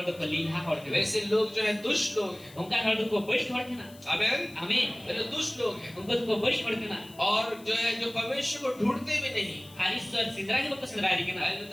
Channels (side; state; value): left; noise; hiss, 22 dB below the sound